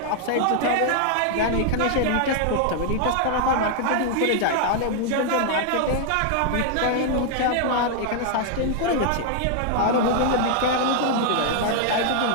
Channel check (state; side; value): different; both; correlation 0.00